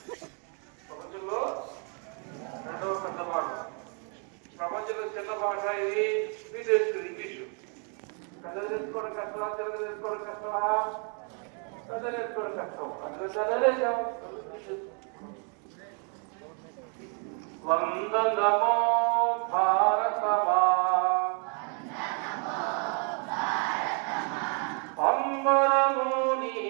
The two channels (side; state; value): left; quieter; 39.4 dB